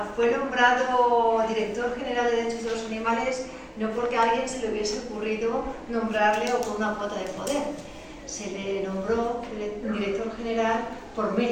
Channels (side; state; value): both; identical; correlation 1.00